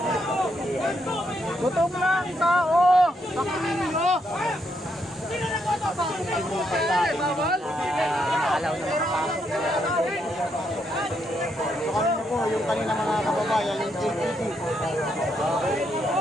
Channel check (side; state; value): both; normal; correlation 0.77